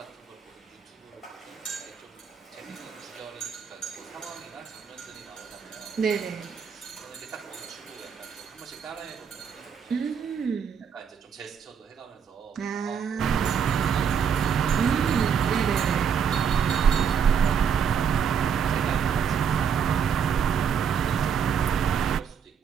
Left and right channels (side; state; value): left; quieter; 7.2 dB